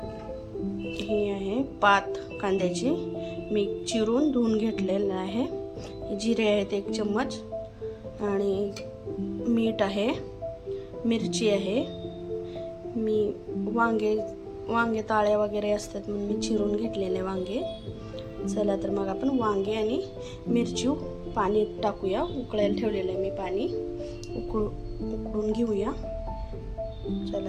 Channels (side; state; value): both; identical; correlation 1.00